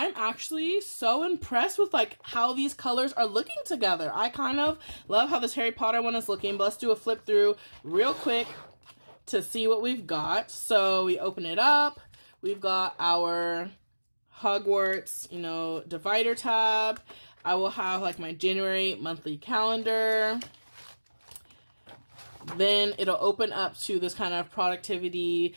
actually so impressed with like how these colors are looking together. I kind of love how this Harry Potter one is looking, but let's do a flip through real quick to see what we've got. So we open it up. We've got our Hogwarts, you know, divider tab. I will have like my January monthly calendar. Then it'll open up to this kind of productivity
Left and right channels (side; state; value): both; inverted; correlation -1.00